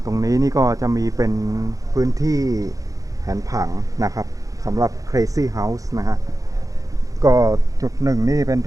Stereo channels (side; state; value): left; late; 0.17 ms